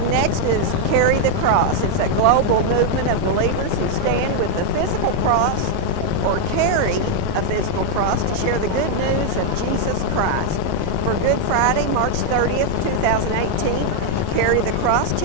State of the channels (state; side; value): different; both; correlation 0.00